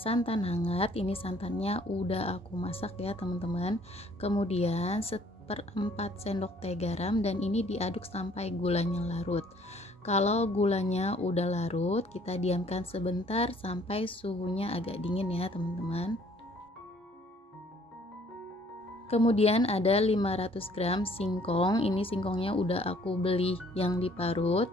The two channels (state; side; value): normal; both; correlation 0.59